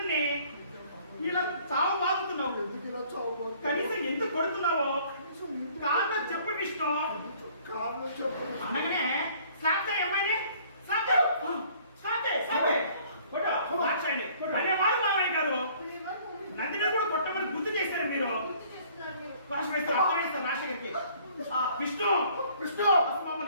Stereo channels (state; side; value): inverted; both; correlation -0.57